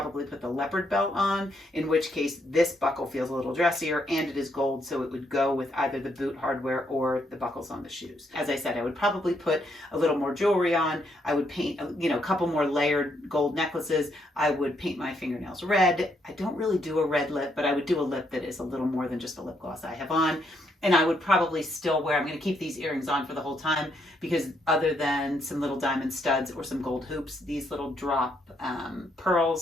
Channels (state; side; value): normal; both; correlation 0.74